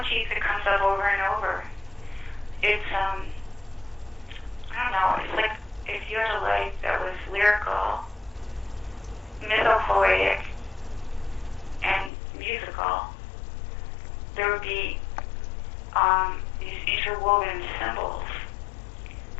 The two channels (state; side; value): drops out; right; at 12.1 s